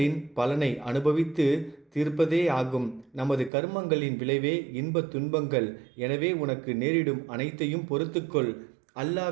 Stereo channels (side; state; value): left; drops out; at 3.5 s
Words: பலனை அனுபவித்து தீர்ப்பதே ஆகும். நமது கர்மங்களின் விளைவே இன்பத் துன்பங்கள். எனவே உனக்கு நேரிடும் அனைத்தையும் பொறுத்துக்கொள்.